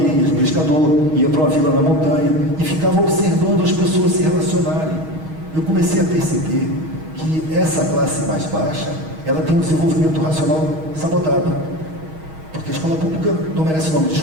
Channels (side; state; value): left; late; 6.3 ms